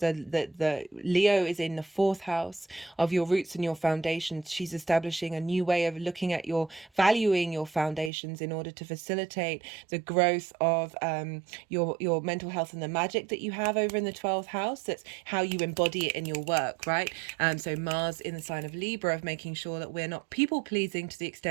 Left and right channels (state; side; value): drops out; left; at 8.1 s